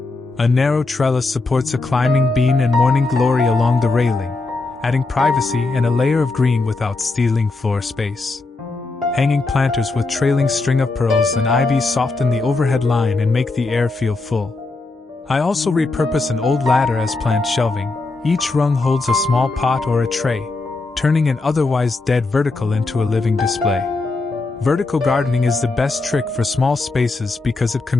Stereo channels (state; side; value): quieter; right; 3.5 dB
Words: A narrow trellis supports a climbing bean and morning glory along the railing, adding privacy and a layer of green without stealing floor space. Hanging planters with trailing string of pearls and ivy soften the overhead line and make the air feel full. I also repurpose an old ladder as plant shelving. Each rung holds a small pot or a tray, turning an otherwise dead vertical into a living display. Vertical gardening is the best trick for small spaces because it